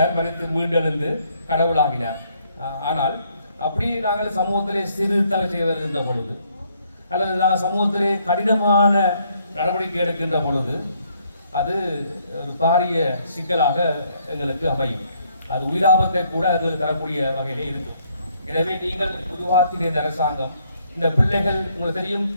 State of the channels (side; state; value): both; inverted; correlation -0.69